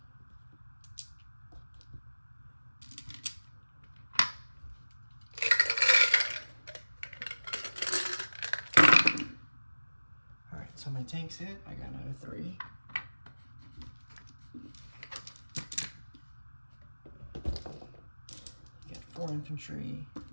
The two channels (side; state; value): both; inverted; correlation -1.00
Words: Alright, so my tanks hit, I got another 3. You got 4 infantry,